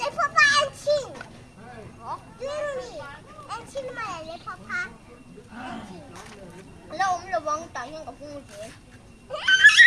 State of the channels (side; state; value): both; identical; correlation 1.00